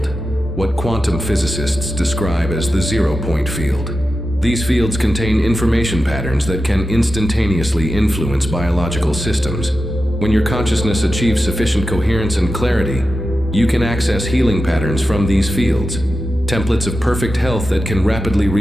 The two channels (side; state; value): both; normal; correlation 0.91